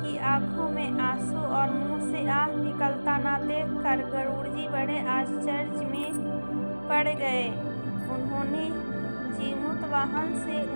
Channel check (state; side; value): inverted; both; correlation -1.00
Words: की आंखों में आंसू और मुंह से आह निकलता न देखकर गरुड़ जी बड़े आश्चर्य में पड़ गए। उन्होंने जीमूत वाहन से